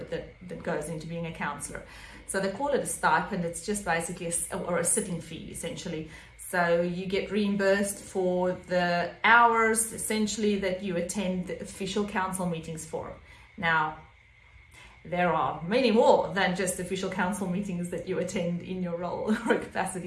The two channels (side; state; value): both; identical; correlation 1.00